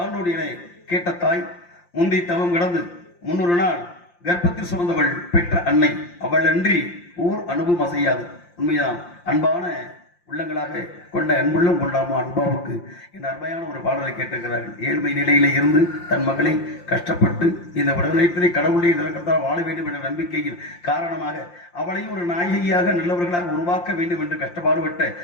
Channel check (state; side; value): late; right; 5.7 ms